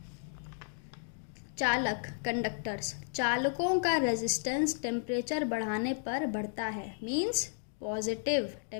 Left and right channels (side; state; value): right; silent; digital silence